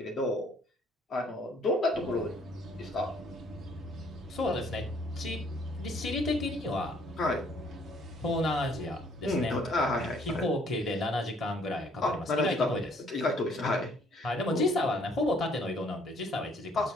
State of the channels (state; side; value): normal; both; correlation 0.62